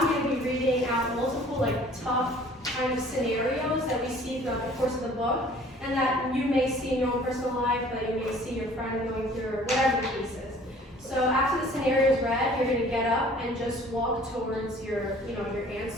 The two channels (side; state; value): both; normal; correlation 0.52